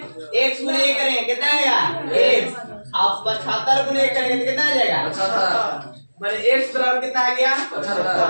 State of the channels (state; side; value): inverted; both; correlation -1.00